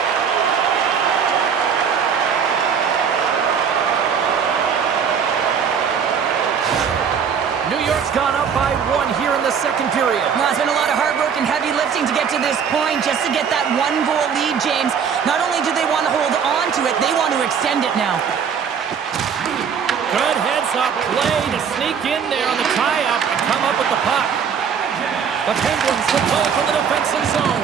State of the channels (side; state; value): left; quieter; 7.0 dB